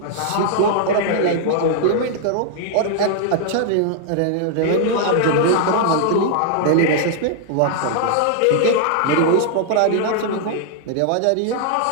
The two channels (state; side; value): different; both; correlation -0.01